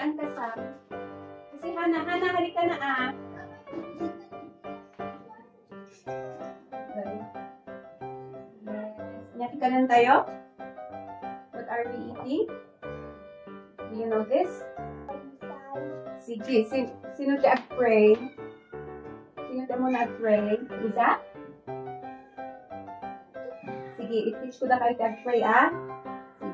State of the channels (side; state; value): both; identical; correlation 1.00